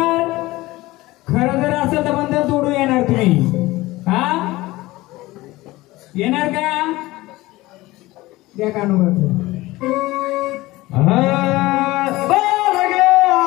खरं जर असेल तर बंधन तोडू येणार तुम्ही हा येणार का द्या कानून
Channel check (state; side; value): quieter; right; 19.1 dB